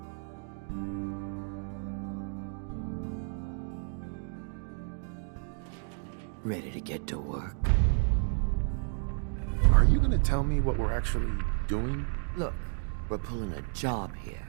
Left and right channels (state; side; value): silent; left; 57 dB below the other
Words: Ready to get to work? Are you gonna tell me what we're actually doing? Look, we're pulling a job here.